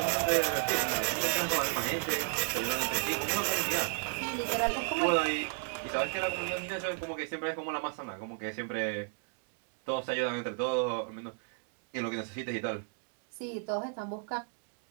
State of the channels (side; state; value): left; silent; 56 dB below the other